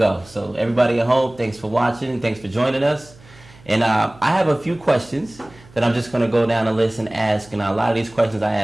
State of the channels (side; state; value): right; noise; hum, 24 dB below the sound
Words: So everybody at home, thanks for watching and thanks for joining us. And I have a few questions that I'm just going to go down the list and ask. And a lot of these questions I